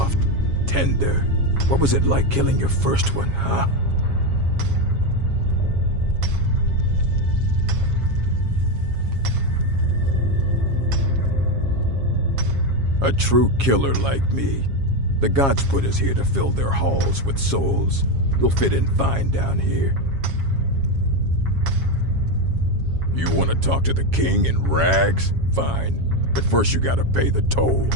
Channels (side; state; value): left; late; 7.3 ms